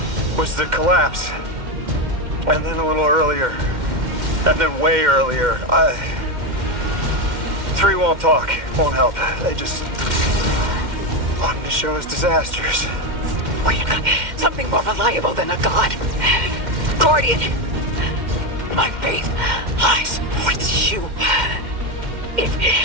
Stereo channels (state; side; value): late; left; 2.1 ms